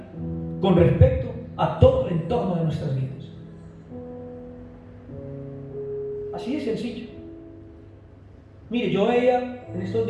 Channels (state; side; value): identical; both; correlation 1.00